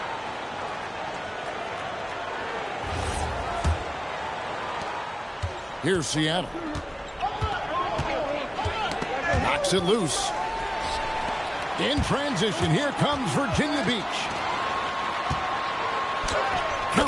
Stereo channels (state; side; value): identical; both; correlation 1.00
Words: Here's Seattle. Knocks it loose. In transition, here comes Virginia Beach.